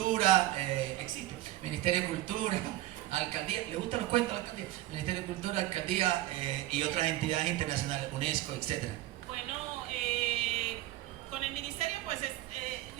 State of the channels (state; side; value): quieter; left; 15.8 dB